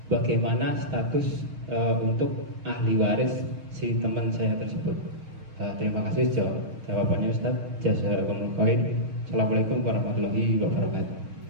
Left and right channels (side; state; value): left; late; 6.4 ms